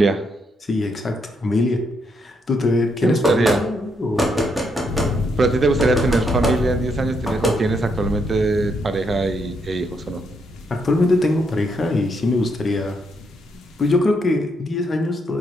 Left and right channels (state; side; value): normal; both; correlation 0.77